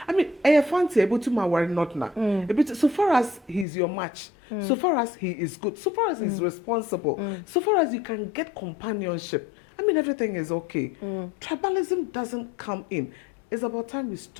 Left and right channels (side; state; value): right; drops out; at 3.7 s